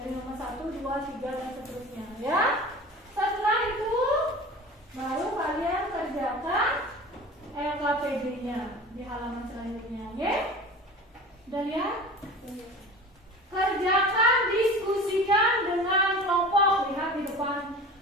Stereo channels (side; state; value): both; normal; correlation 0.37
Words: nomor 1, 2, 3 dan seterusnya ya. Setelah itu baru kalian kerjakan LKPD-nya di halaman selanjutnya, ya. Udah lihat? Kerjakan, diskusikan dengan kelompok. Lihat di depan.